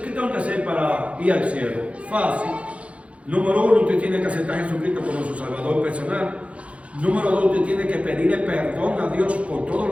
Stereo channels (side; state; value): left; late; 0.063 ms